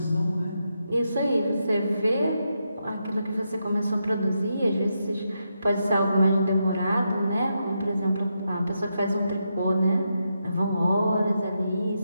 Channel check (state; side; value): inverted; both; correlation -0.84